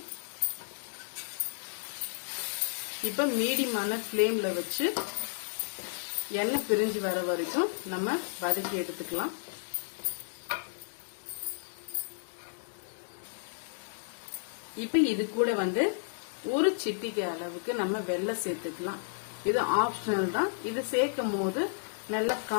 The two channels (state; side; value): silent; right; digital silence